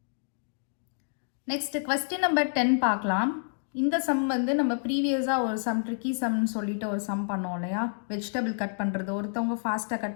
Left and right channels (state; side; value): silent; right; digital silence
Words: நெக்ஸ்ட் கொஸ்டின் நம்பர் 10 பார்க்கலாம். இந்த சம் வந்து நம்ம ப்ரீவியஸாக ஒரு சம் ட்ரிக்கி சம்னு சொல்லிட்டு ஒரு சம் பண்ணோம் இல்லையா? வெஜிடபிள் கட் பண்ணுறது, ஒருத்தவங்க ஃபாஸ்ட்டாக